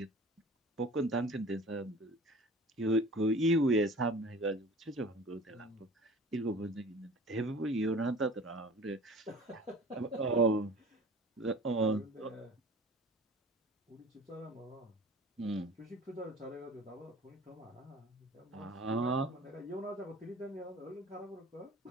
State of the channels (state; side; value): normal; both; correlation 0.43